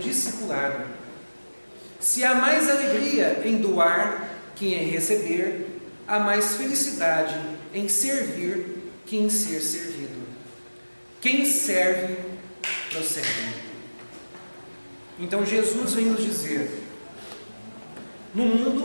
Se há mais alegria em doar que em receber, há mais felicidade em servir que em ser servido. Quem serve, prossegue. Então Jesus vem nos dizer: no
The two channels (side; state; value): both; inverted; correlation -1.00